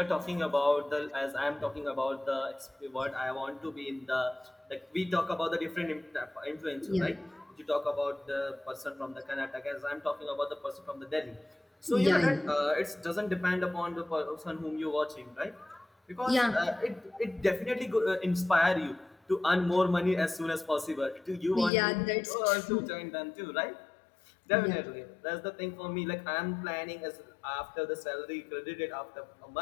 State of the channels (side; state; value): right; drops out; at 21.7 s